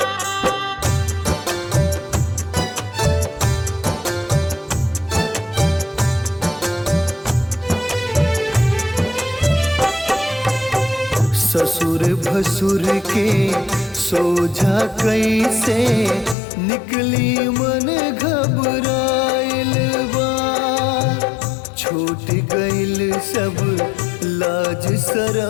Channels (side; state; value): right; drops out; at 16.4 s